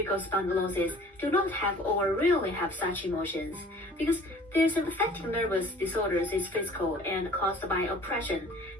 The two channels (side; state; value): both; normal; correlation 0.49